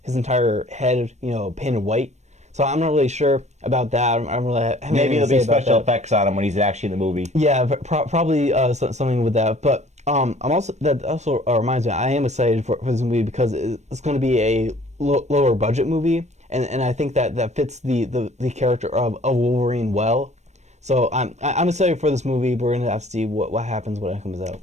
entire head painted white. So I'm not really sure about that. I'm really maybe there'll be special effects on him when he's actually in the movie. Yeah, but probably something with that. But that also reminds me, I am excited for this movie because it's going to be a lower budget movie, and I think that fits the character of Wolverine well. So I'm excited for this movie. We're going to have to see what happens when it comes out.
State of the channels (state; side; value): late; left; 0.33 ms